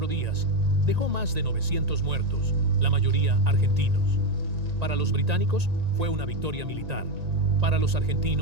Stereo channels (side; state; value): left; late; 1.9 ms